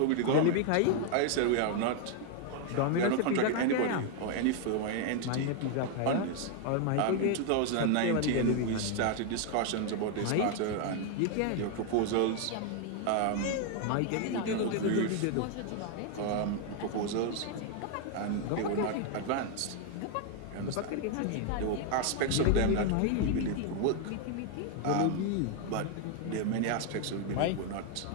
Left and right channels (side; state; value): both; different; correlation 0.00